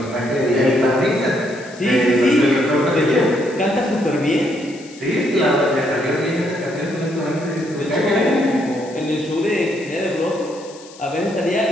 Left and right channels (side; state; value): left; noise; hiss, 21 dB below the sound